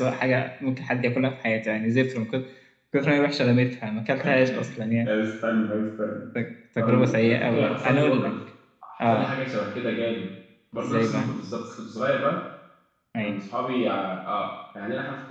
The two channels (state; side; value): identical; both; correlation 1.00